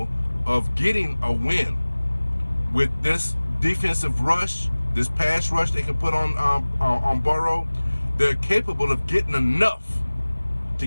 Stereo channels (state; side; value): inverted; both; correlation -1.00